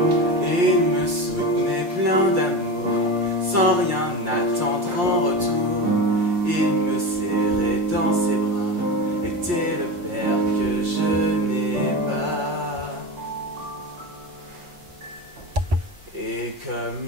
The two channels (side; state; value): left; late; 5.7 ms